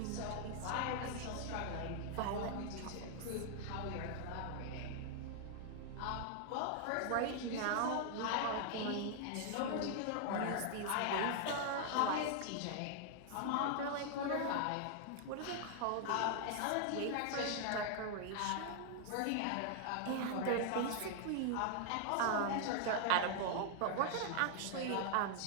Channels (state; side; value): different; both; correlation 0.00